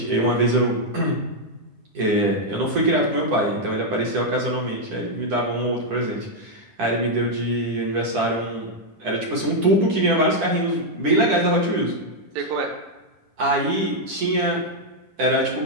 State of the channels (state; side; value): late; left; 10 ms